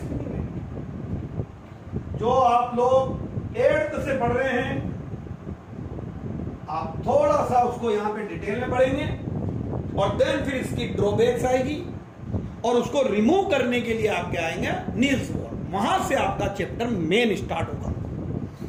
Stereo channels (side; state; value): both; identical; correlation 1.00